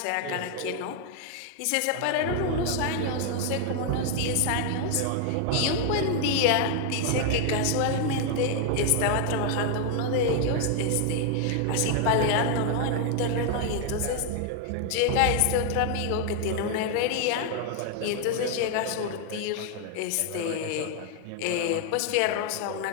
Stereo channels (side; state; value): both; different; correlation 0.00